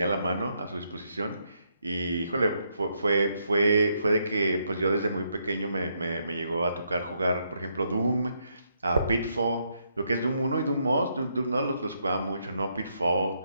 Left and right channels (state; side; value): inverted; both; correlation -0.76